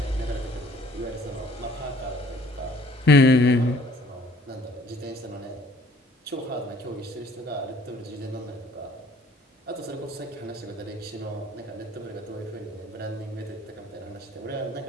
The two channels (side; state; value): both; normal; correlation 0.56